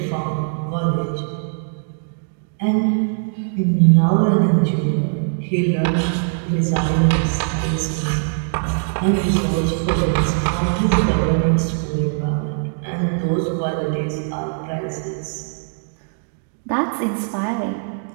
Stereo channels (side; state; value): left; silent; digital silence